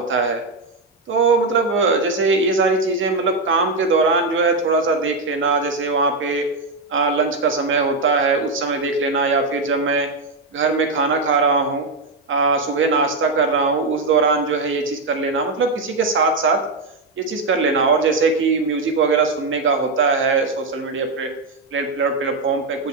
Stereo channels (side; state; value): left; quieter; 3.4 dB